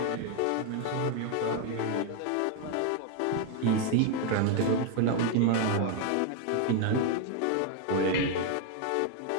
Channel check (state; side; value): different; both; correlation 0.01